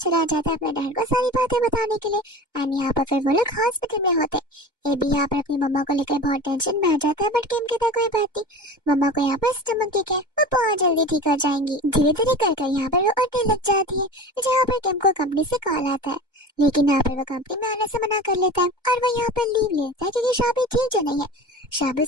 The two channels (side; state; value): both; normal; correlation 0.34